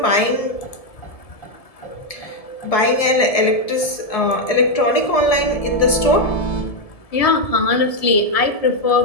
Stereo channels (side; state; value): right; late; 1.7 ms